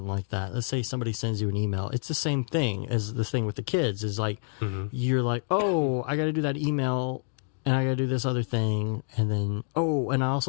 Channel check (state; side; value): silent; right; digital silence